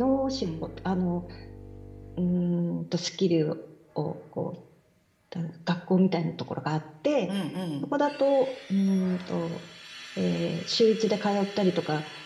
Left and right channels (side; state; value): both; identical; correlation 1.00